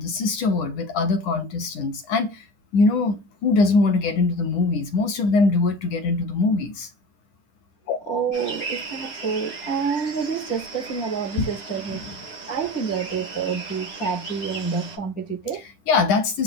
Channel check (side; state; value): right; late; 10 ms